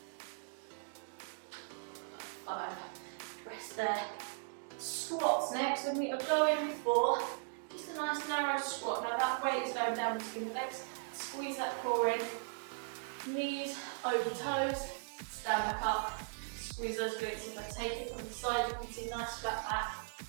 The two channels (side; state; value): left; silent; digital silence